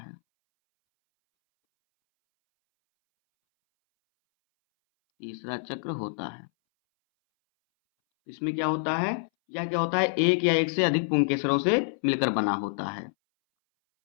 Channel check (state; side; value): silent; right; 60 dB below the other